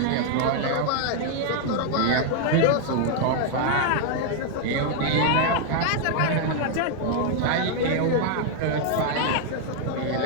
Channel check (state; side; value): different; both; correlation 0.00